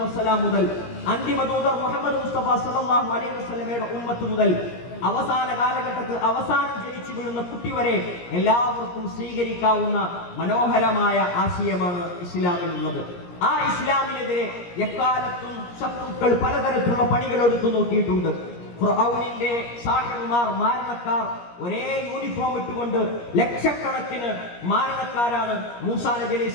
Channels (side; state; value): right; late; 17 ms